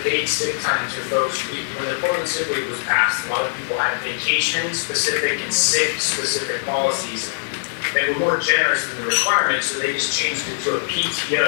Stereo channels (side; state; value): right; silent; digital silence